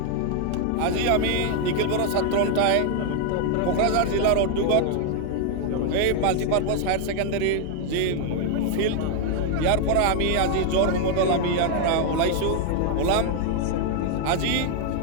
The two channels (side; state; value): both; different; correlation 0.00